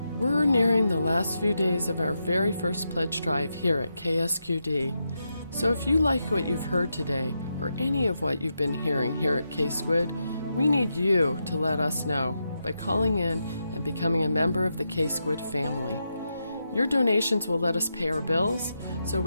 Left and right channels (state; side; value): inverted; both; correlation -0.85